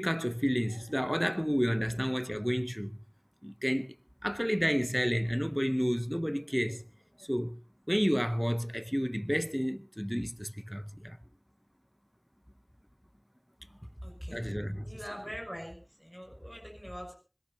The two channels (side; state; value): both; identical; correlation 1.00